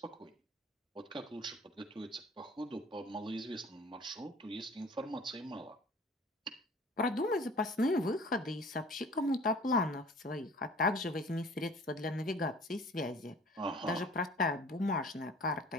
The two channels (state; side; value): normal; both; correlation 0.47